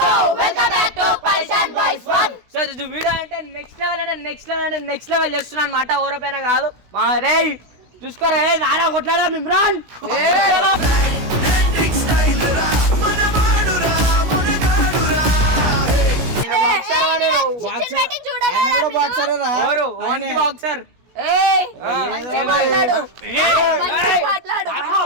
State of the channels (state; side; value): late; left; 16 ms